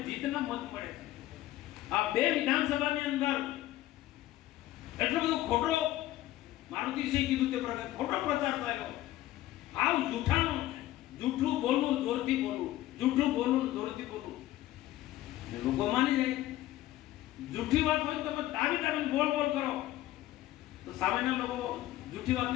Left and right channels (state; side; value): quieter; right; 15.1 dB